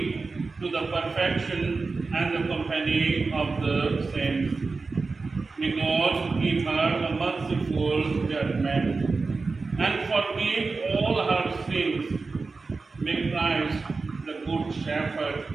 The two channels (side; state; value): left; quieter; 4.1 dB